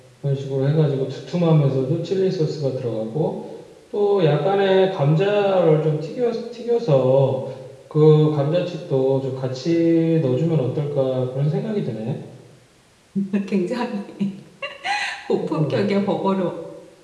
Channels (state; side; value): identical; both; correlation 1.00